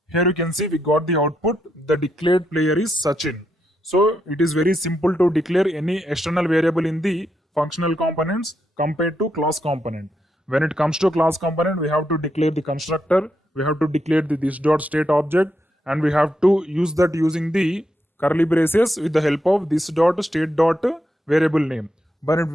Here you can see we got the output. The declared player is Sachin. So it is very simple to declare any external variable in the functional components compared to class component. When it comes to class component, we have to declare the constructor, we have to declare the this.state object, and we have to use that using the curly braces with the help of this.state.variable name.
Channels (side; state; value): both; normal; correlation 0.81